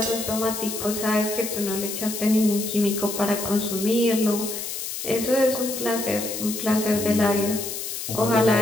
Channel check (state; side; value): noise; left; hiss, 6 dB below the sound